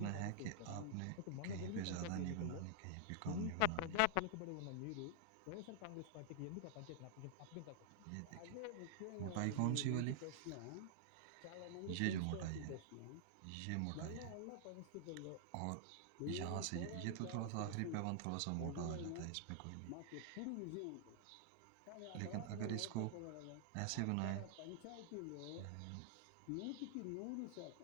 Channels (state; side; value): different; both; correlation -0.01